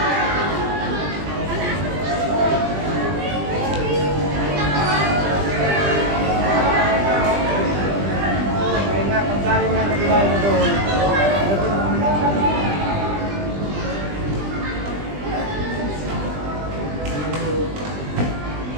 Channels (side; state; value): left; late; 20 ms